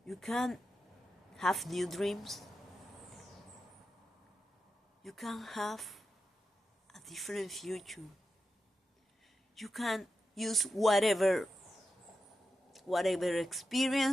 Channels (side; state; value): both; normal; correlation 0.89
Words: you can have new dreams. You can have a different future. You can use whatever